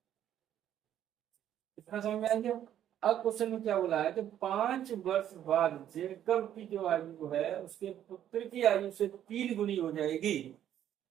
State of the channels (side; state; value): left; quieter; 10.8 dB